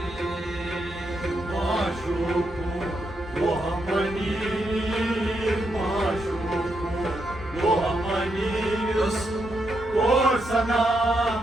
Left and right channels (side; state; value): both; normal; correlation 0.81